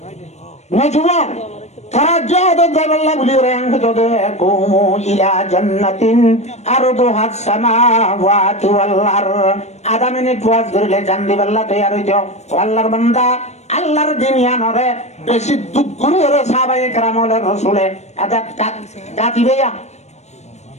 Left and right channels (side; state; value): right; late; 0.32 ms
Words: না জুয়ান তারা জাবাল্লাহ বলি রেং জদে কুমু ইলা জান্নাতিন আরদুহা সামাওয়াতু ওয়াল আরদ আধা মিনিট ওয়াজ করলে জান্দি বাল্লাহ তৈয়ার হইতো আল্লাহর বান্দা আল্লাহর দিনিয়ানরে বেশি দুঃখ করে ওরে সাহাবায়ে কেরামলে রাসূলে আদা দাতি বেয়া